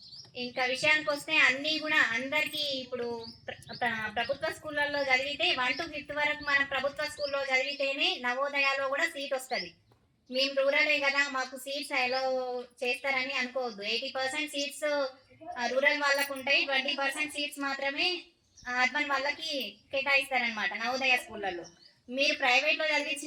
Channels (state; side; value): identical; both; correlation 1.00